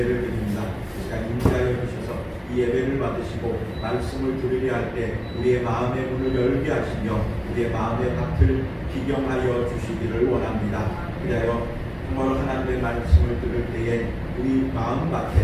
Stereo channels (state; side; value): identical; both; correlation 1.00